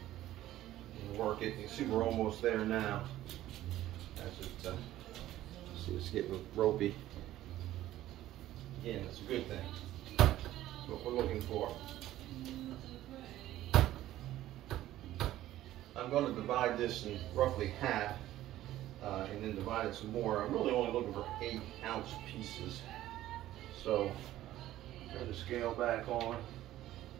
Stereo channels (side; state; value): left; quieter; 14.2 dB